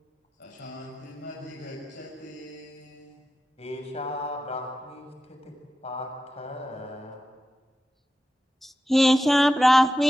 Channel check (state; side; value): normal; both; correlation 0.91